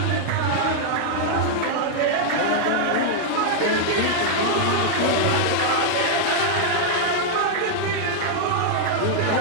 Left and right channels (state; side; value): different; both; correlation -0.01